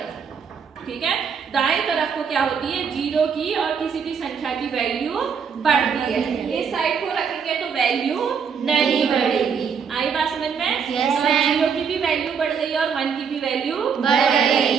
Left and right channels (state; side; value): quieter; left; 6.6 dB